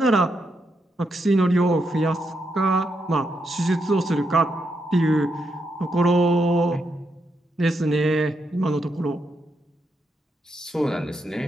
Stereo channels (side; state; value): both; normal; correlation 0.81